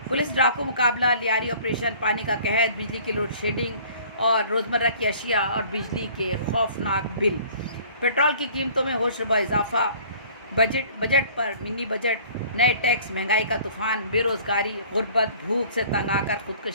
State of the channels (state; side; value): inverted; both; correlation -0.52